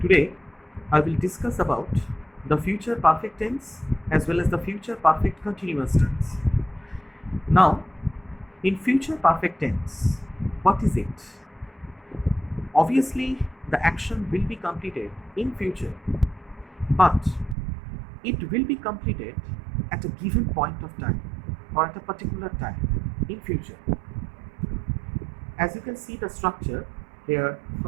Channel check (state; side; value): drops out; left; at 17.6 s